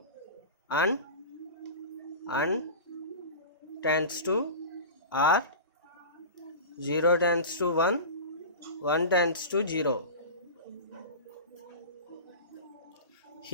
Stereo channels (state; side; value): inverted; both; correlation -0.31